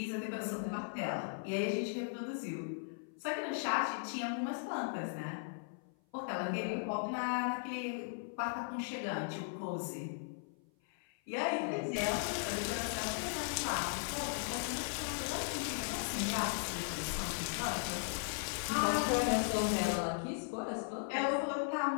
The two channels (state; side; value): silent; right; 53 dB below the other